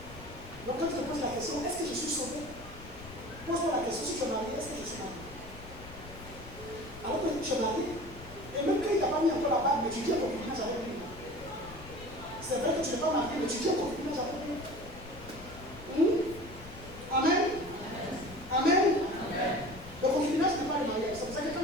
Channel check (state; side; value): noise; left; rumble, 15 dB below the sound